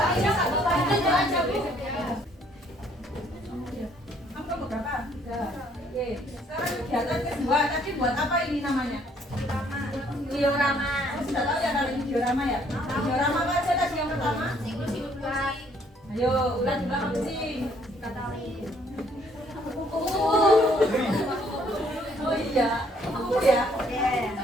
Kamu kelompok berapa? 3. Oke. Sekarang kegiatan kedua. Tadi buat apa ini namanya? Diorama. Kamu sudah tahu ya kalau ini diorama ya? Diorama apa aja tadi yang pertama? siklus hidup ular. Ayo, ular juga kucing. Oh iya, kupu ya.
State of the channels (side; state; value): both; normal; correlation 0.64